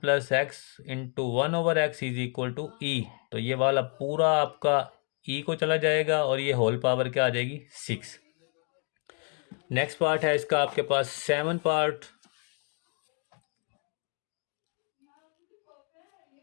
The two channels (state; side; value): quieter; right; 38.6 dB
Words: x into one over x is equal to e. तो ये वाला पूरा आपका ई को चला जाएगा, और ये होल पावर क्या आ जाएगी, सिक्स। नेक्स्ट पार्ट है इसका आपके पास seven part,